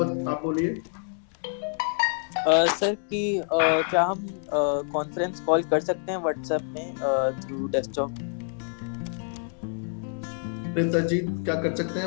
बोलिए। सर कि क्या हम कॉन्फ्रेंस कॉल कर सकते हैं व्हाट्सएप में थ्रू डेस्कटॉप? जी, क्या कर सकते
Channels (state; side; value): silent; right; 60 dB below the other